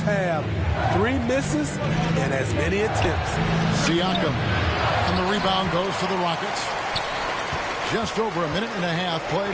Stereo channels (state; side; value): identical; both; correlation 1.00